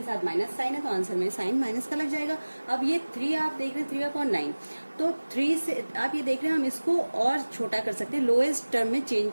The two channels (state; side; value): inverted; both; correlation -1.00